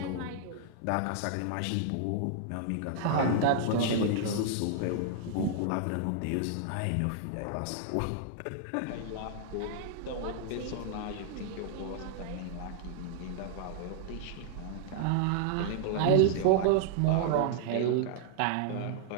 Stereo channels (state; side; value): different; both; correlation -0.01